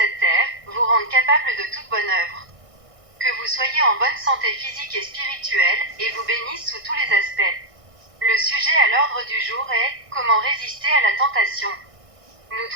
terre, vous rende capable de toute bonne œuvre. Que vous soyez en bonne santé physique et spirituelle, et vous bénisse sous tous les aspects. Le sujet à l'ordre du jour est « Comment résister à la tentation ?» Nous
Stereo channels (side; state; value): left; late; 1.6 ms